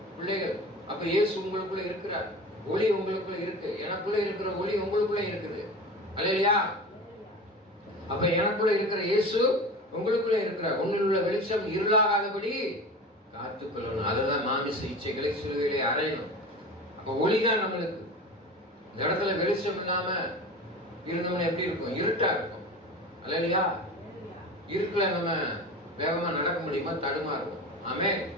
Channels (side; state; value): both; normal; correlation 0.33